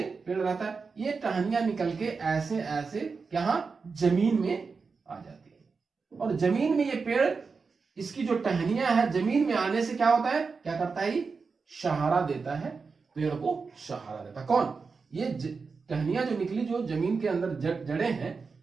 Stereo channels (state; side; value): quieter; left; 4.8 dB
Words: पेड़ रहता है, ये टहनियां निकल के ऐसे ऐसे यहां जमीन में आ जाती है। और जमीन में ये पेड़, इसकी जो टहनियां है जमीन में आने से क्या होता है? क्या करता है? सहारा देता है, पेड़ को सहारा देता है। कौन? ये टहनियां जो निकली, जो जमीन के अंदर जड़ें हैं,